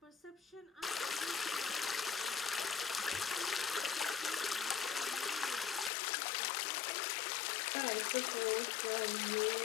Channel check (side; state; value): right; drops out; at 5.9 s